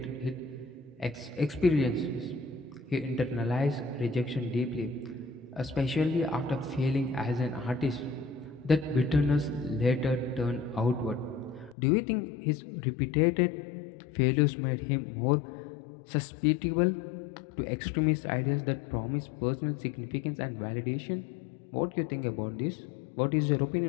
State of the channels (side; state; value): right; drops out; at 11.8 s